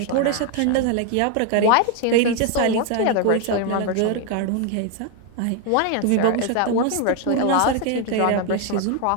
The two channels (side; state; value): both; different; correlation 0.01